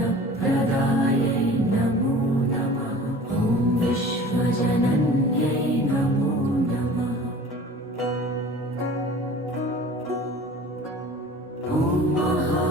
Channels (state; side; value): normal; both; correlation 0.43